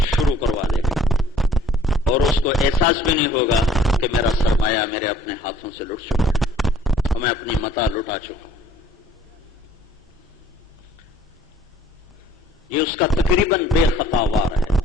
شروع کروا دے گا، اور اس کو احساس بھی نہیں ہوگا کہ میرا سرمایہ میرے اپنے ہاتھوں سے لٹ چکا ہے اور میں اپنی متاع لٹا چکا ہوں۔ یہ اس کا تقریباً بے خطا وار ہے،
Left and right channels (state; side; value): normal; both; correlation 0.55